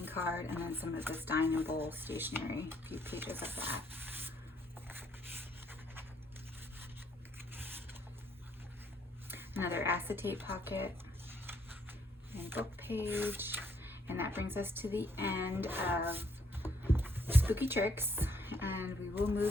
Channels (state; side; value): normal; both; correlation 0.69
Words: card, and then some of this dine and bowl stationery, a few pages of that. Another acetate pocket and book page. And that brings us to the end of Spooky Tricks, and we will